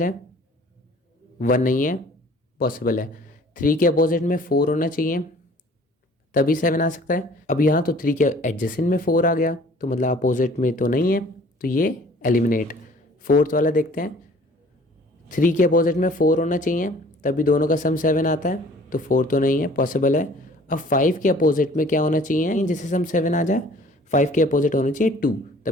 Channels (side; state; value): both; normal; correlation 0.52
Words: 1 नहीं है, पॉसिबल है। 3 के अपोजिट में 4 होना चाहिए, तभी 7 आ सकता है। अब यहाँ तो 3 के एडजेसेंट में 4 आ गया, तो मतलब अपोजिट में तो नहीं है, तो ये एलिमिनेट। फोर्थ वाला देखते हैं, 3 के अपोजिट में 4 होना चाहिए, तभी दोनों का सम 7 आता है, तो 4 तो नहीं है, पॉसिबल है। अब 5 के अपोजिट में क्या होना चाहिए जिससे सम 7 आ जाए, 5 के अपोजिट होना चाहिए 2,